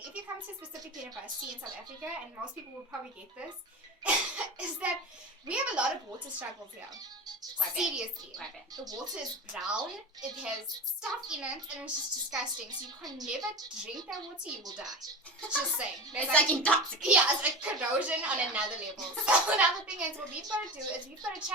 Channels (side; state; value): both; normal; correlation 0.28